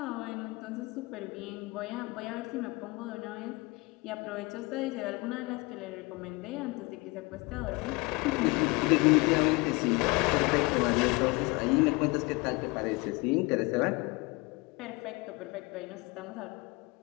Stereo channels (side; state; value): right; quieter; 25.5 dB